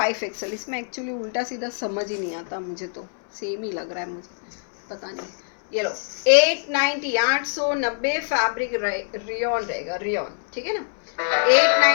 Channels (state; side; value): silent; right; 61 dB below the other